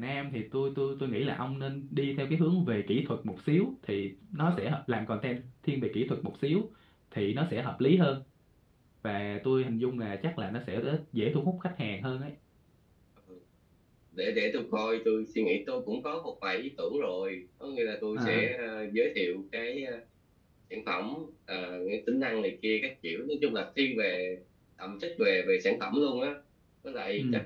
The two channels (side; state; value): both; identical; correlation 1.00